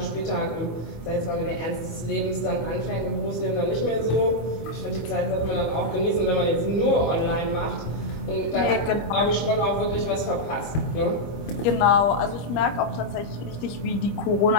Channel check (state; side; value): late; right; 25 ms